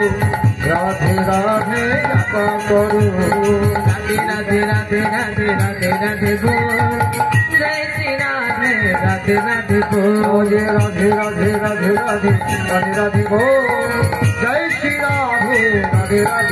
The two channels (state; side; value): identical; both; correlation 1.00